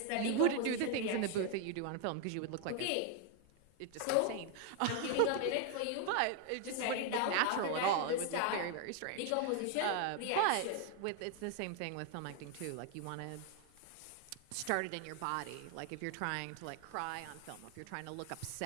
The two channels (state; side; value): different; both; correlation 0.01